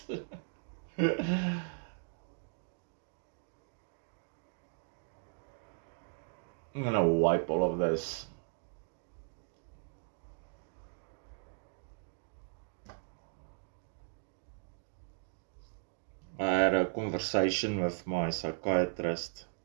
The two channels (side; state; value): left; silent; digital silence